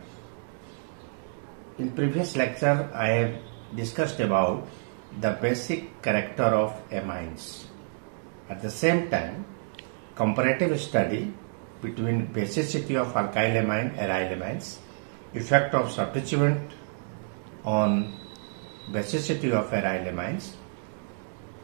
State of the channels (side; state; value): left; silent; digital silence